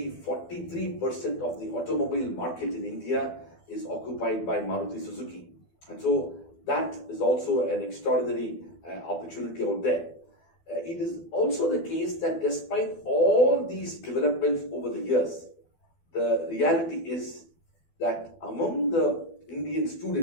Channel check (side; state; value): right; late; 12 ms